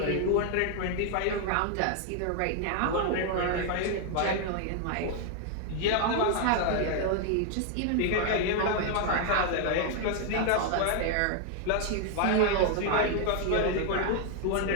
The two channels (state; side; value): different; both; correlation 0.00